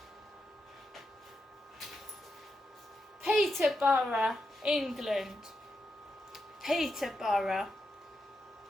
Peterborough, England. Peterborough.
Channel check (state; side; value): normal; both; correlation 0.86